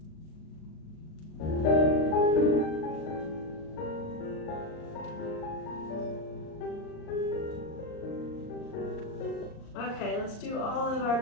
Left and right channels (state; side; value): late; right; 38 ms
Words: Okay, let's do all of our